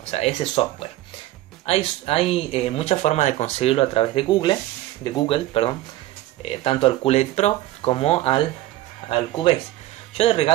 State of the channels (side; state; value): left; quieter; 15.6 dB